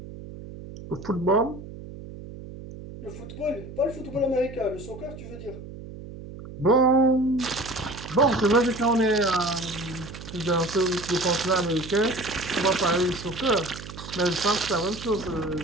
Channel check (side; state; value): right; noise; hum, 13 dB below the sound